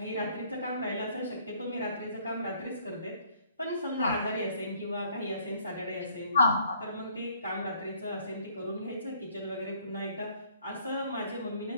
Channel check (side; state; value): both; inverted; correlation -0.61